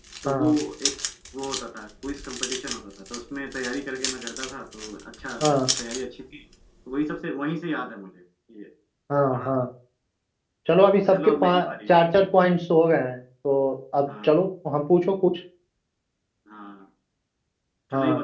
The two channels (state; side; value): identical; both; correlation 1.00